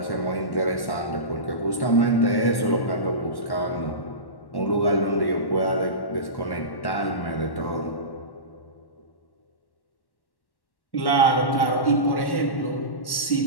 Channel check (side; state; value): right; late; 1.1 ms